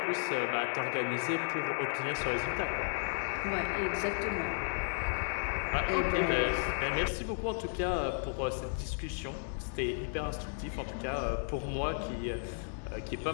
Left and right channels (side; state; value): right; silent; digital silence